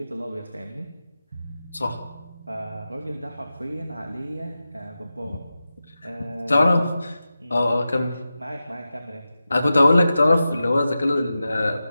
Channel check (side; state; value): both; inverted; correlation -0.93